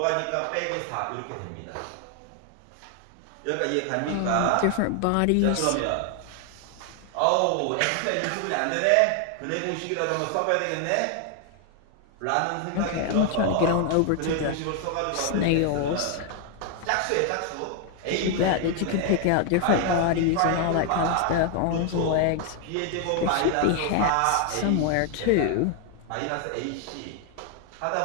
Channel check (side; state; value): both; different; correlation 0.00